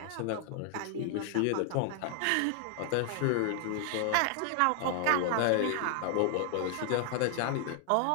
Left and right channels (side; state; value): both; different; correlation 0.00